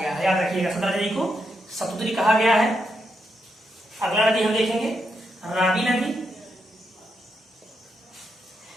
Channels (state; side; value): normal; both; correlation 0.82